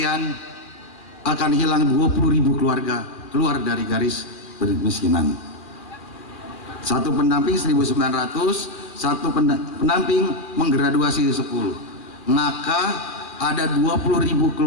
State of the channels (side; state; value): right; late; 2.4 ms